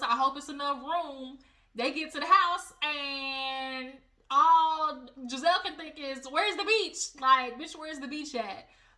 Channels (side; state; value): both; identical; correlation 1.00